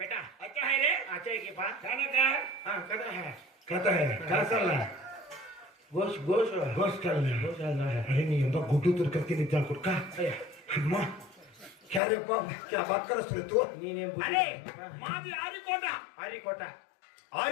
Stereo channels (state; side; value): drops out; right; at 12.0 s